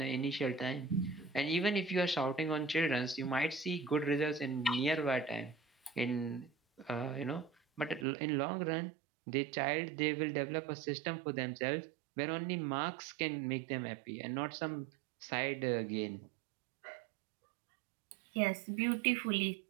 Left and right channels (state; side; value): drops out; left; at 8.1 s